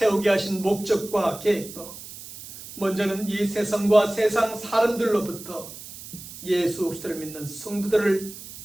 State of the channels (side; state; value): right; noise; hiss, 14 dB below the sound